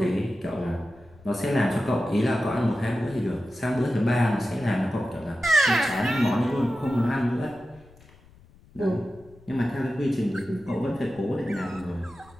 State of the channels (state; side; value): noise; left; rumble, 25 dB below the sound